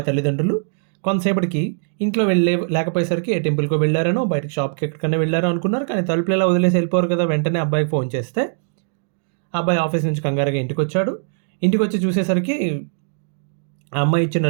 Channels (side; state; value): left; silent; digital silence